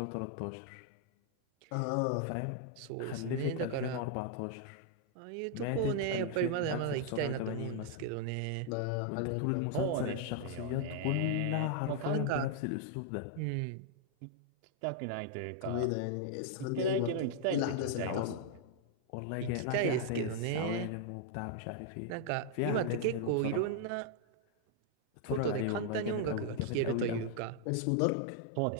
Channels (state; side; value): different; both; correlation -0.01